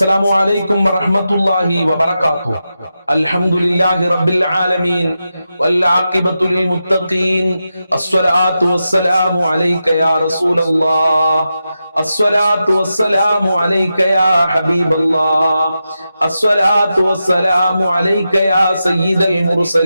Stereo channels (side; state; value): both; inverted; correlation -0.89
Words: عليكم ورحمة الله وبركاته. الحمد لله رب العالمين والعاقبة للمتقين. الصلاة والسلام عليك يا رسول الله. الصلاة والسلام عليك يا حبيب الله. الصلاة والسلام عليك يا سيد